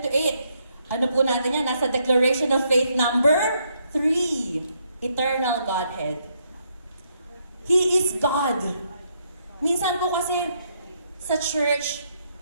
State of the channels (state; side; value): inverted; both; correlation -0.75